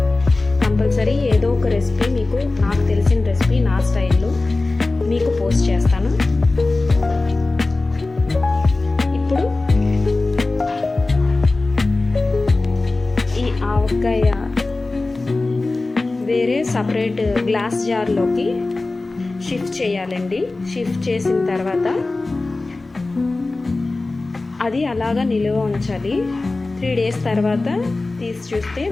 కంపల్సరీ ఏదో ఒక రెసిపీ మీకు, నాకు తెలిసిన రెసిపీ నా స్టైల్లో మీకు పోస్ట్ చేస్తాను. ఇప్పుడు ఈ ఆవకాయ వేరే సపరేట్ గ్లాస్ జార్లోకి షిఫ్ట్ చేయాలండి. షిఫ్ట్ చేసిన తర్వాత అది అలాగా నిలువ ఉంచాలి. 3 డేస్ తర్వాత తీసి చూస్తే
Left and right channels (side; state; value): right; quieter; 3.3 dB